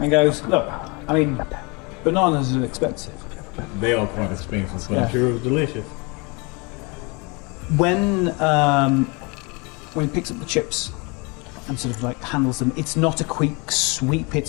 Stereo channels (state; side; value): quieter; right; 29.4 dB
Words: goes, "Look, I mean, bananas are expensive." They are quite expensive, but Yeah. I'm sure it was delicious. When he picks up the chips and sort of like handles them, it's not a quick sweep.